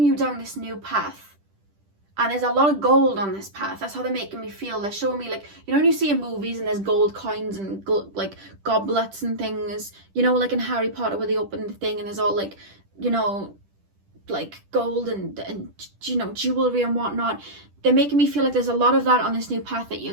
you down this new path. And there's a lot of gold on this path. That's how they're making me feel. They're showing me, like, you know when you see in movies and there's gold coins and like goblets and things, you know, like in Harry Potter where they open the thing and there's all like, you know, like gold and you know, jewelry and whatnot. They're making me feel like there's a lot of that on this new path that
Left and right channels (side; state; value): left; late; 10 ms